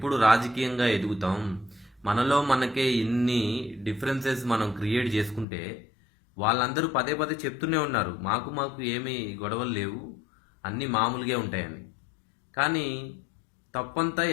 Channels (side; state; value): right; drops out; at 5.5 s